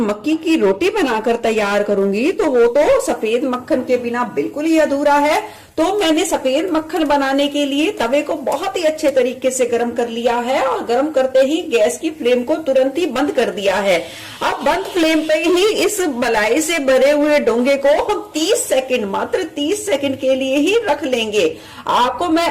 की रोटी बनाकर तैयार करूंगी तो वो तो सफेद मक्खन के बिना बिल्कुल ही अधूरा है। तो मैंने सफेद मक्खन बनाने के लिए तवे को बहुत ही अच्छे तरीके से गर्म कर लिया है और गर्म करते ही गैस की फ्लेम को तुरंत ही बंद कर दिया है। अब बंद फ्लेम पे ही इस मलाई से भरे हुए डोंगे को हम 30 सेकंड, मात्र 30 सेकंड के लिए ही रख लेंगे। आपको मैं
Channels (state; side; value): identical; both; correlation 1.00